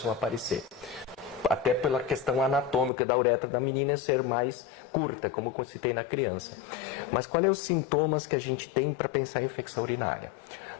a aparecer. Até pela questão anatômica da uretra da menina ser mais curta, como eu citei na criança. Mas quais são os sintomas que a gente tem para pensar em infecção urinária?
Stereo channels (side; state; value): right; drops out; at 2.9 s